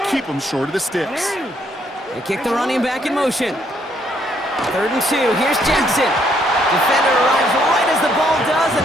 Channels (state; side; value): normal; both; correlation 0.70